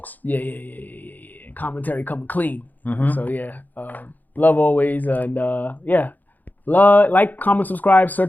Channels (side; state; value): right; late; 0.084 ms